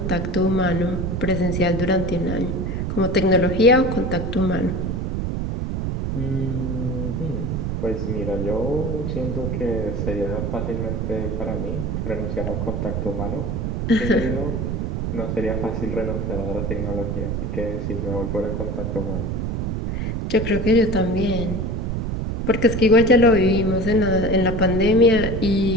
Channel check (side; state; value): right; noise; rumble, 2 dB below the sound